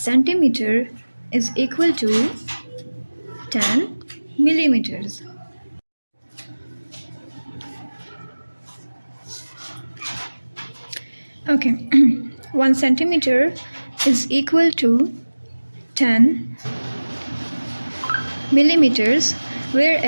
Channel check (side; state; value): both; inverted; correlation -1.00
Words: is equal to 10 millimeters. Okay, 1 centimeter is equal to 10 millimeters,